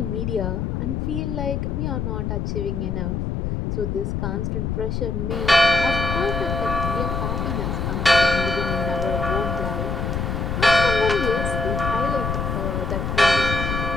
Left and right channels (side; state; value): left; noise; rumble, 1 dB below the sound